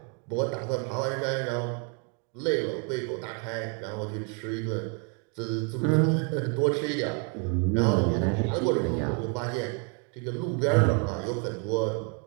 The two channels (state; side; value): quieter; left; 36.2 dB